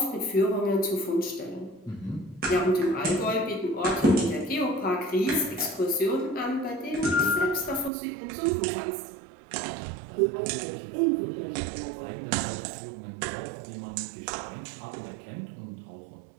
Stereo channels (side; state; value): left; drops out; at 7.9 s